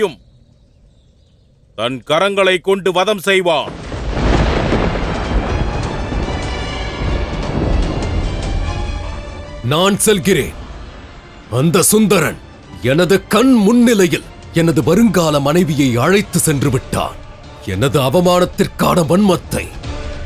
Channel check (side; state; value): both; identical; correlation 1.00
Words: தன் கரங்களை கொண்டு வதம் செய்வான். நான் செல்கிறேன். அந்த சுந்தரன் எனது கண் முன்னிலையில் எனது வருங்கால மனைவியை அழைத்து சென்று விட்டான். எனது அவமானத்திற்கான வன்மத்தை